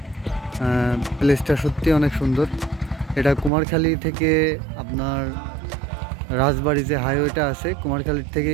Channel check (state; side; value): drops out; left; at 3.5 s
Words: প্লেসটা সত্যি অনেক সুন্দর। এটা কুমারখালী থেকে আপনার রাজবাড়ি যে হাইওয়েটা আছে, কুমারখালীর থেকে